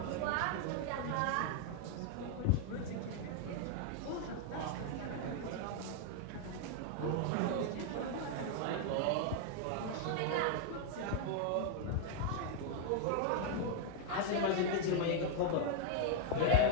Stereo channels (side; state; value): both; different; correlation 0.00